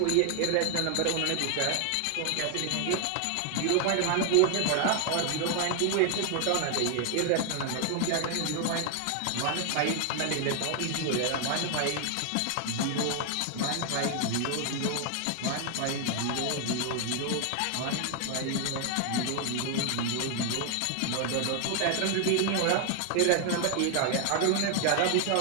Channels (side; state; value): both; different; correlation 0.00